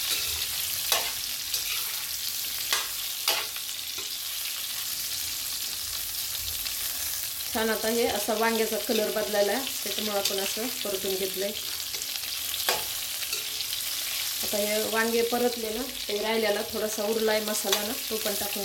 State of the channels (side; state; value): both; identical; correlation 1.00